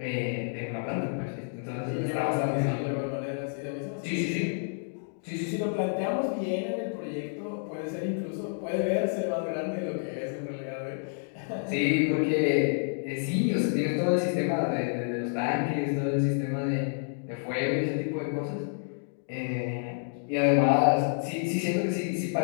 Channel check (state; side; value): silent; right; digital silence